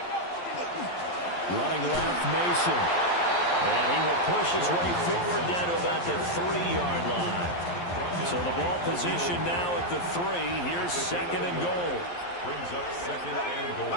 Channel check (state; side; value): late; right; 11 ms